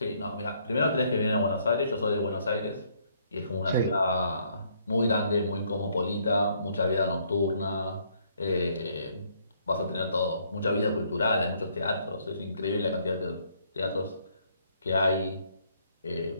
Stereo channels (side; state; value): both; inverted; correlation -0.68